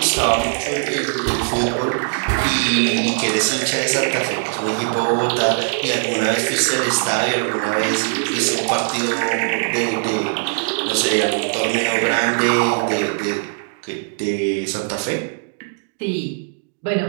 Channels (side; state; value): left; silent; digital silence